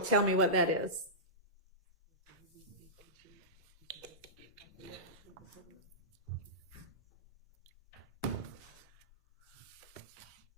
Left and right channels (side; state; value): both; normal; correlation -0.18